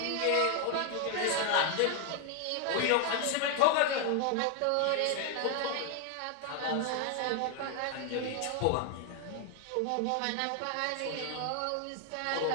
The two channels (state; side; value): different; both; correlation 0.01